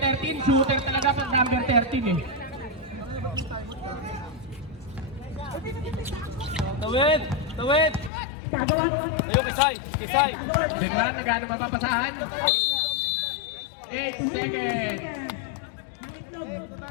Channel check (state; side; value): drops out; right; at 8.1 s